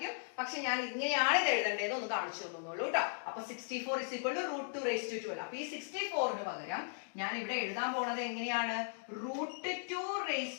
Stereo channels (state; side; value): silent; right; digital silence